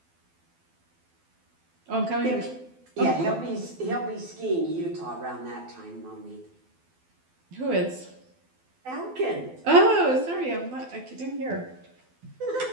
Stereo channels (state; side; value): late; left; 12 ms